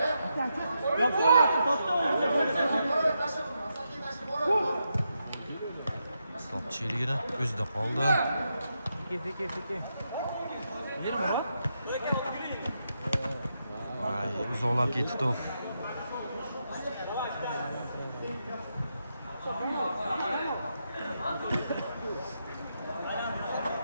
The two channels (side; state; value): both; inverted; correlation -0.84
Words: Top çeyrigini o'zida qoldi. Seki. Vay, uzoqlab ketdi top.